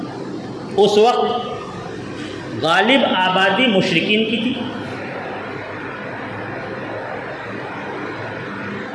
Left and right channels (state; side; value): identical; both; correlation 1.00